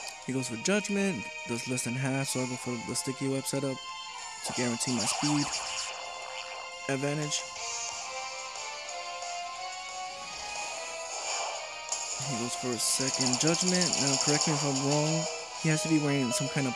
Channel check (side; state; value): both; identical; correlation 1.00